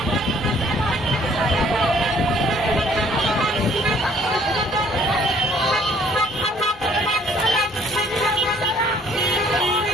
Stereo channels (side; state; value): both; normal; correlation 0.60